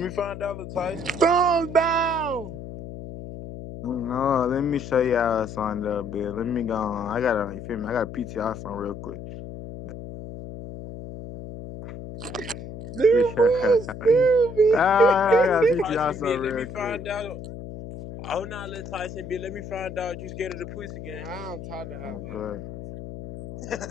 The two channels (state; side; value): noise; left; hum, 11 dB below the sound